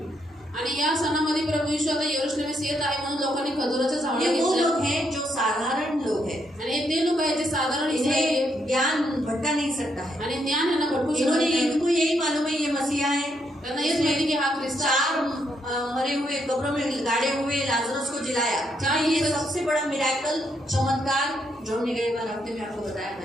आणि या सणामध्ये प्रभू येशू आता यरूशलेमेस येत आहे म्हणून लोकांनी खजुराच्या झावळ्या ये वो घेतल्या. लोग हैं जो साधारण लोग हैं, आणि हे ते लोक आहेत जे साधारण इस्रायली आहेत. इन्हें ज्ञान भटका नहीं सकता है। आणि ज्ञान यांना भटकू शकत इन्होंने नाही. इनको यही मालूम है ये मसीहा है। त्यांना हेच माहिती की हा ख्रिस्त आहे. चार मरे हुए कब्रों में गाड़े हुए लाजरस को जिलाया। चाहे ये सबसे बड़ा मिराकल चमत्कार जो निगेबान हफ्ते में आपको बताया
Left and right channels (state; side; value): normal; both; correlation 0.76